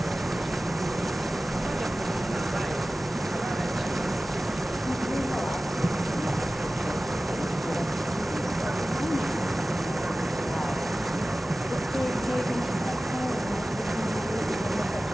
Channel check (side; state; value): both; normal; correlation 0.96